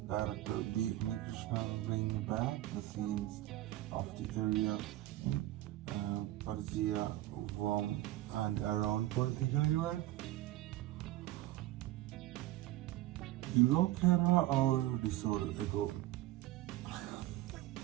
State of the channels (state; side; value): quieter; left; 15.7 dB